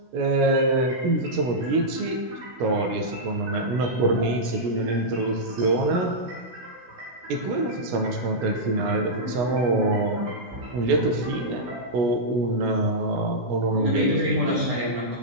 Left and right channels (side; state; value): left; late; 16 ms